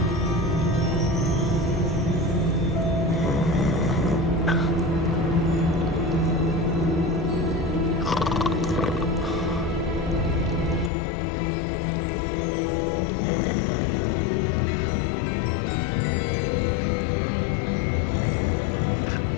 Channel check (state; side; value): drops out; right; at 10.9 s